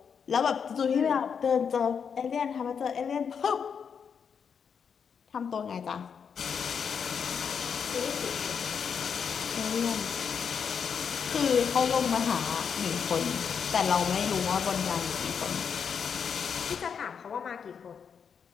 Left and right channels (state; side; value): quieter; right; 6.8 dB